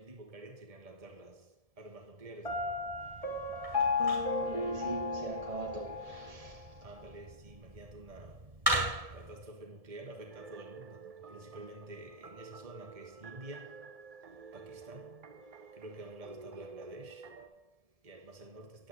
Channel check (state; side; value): late; left; 1.7 ms